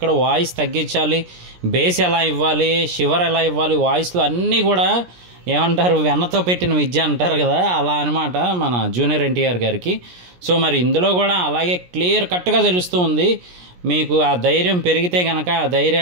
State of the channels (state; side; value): late; left; 17 ms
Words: వాయిస్ తగ్గించాలి, బేస్ ఎలా ఇవ్వాలి, షివర్ ఎలా ఇవ్వాలి, వాయిస్లో అన్నీ కూడా ఏమంటారు, వెన్నతో పెట్టిన విద్య అంటారు కదా, అలా అనమాట మన జూనియర్ ఎన్టీఆర్ గారికి. సో మరి ఇందులో కూడా అలాగే క్లియర్ కట్గా తెలుస్తూ ఉంది. మీకు ఆ ధైర్యం పెరిగితే కనుక ఆ